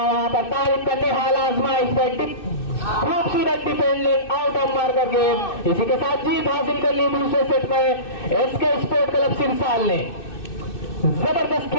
वहां पर, तारिफ करने हाल आजमाइश पर, खूबसूरत defending out of marker game. इसी के साथ जीत हासिल कर ली दूसरे सेट में एसके स्पोर्ट क्लब सिरसाल ने। जबरदस्त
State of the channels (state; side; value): late; right; 2.6 ms